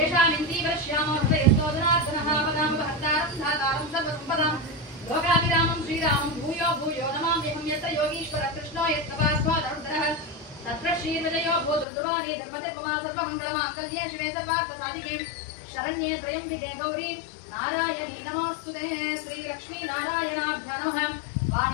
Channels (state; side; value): drops out; right; at 11.9 s